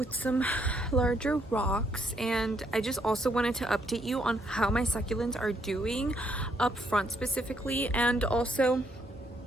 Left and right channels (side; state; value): both; normal; correlation 0.72